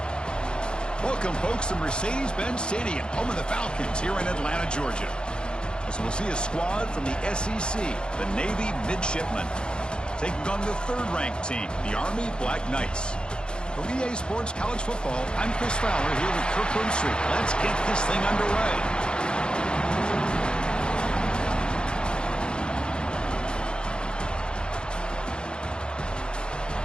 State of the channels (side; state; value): right; late; 0.050 ms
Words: Welcome, folks, to Mercedes-Benz Stadium, home of the Falcons here in Atlanta, Georgia. As we'll see a squad from the SEC, the Navy Midshipmen, taking on the third-ranked team, the Army Black Knights. For EA Sports College Football, I'm Chris Fowler here with Kirk Herbstreit. Let's get this thing underway.